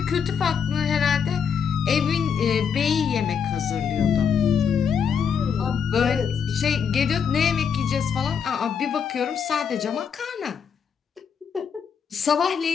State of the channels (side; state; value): right; quieter; 6.9 dB